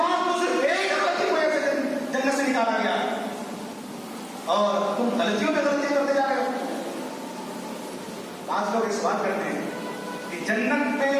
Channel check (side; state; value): both; identical; correlation 1.00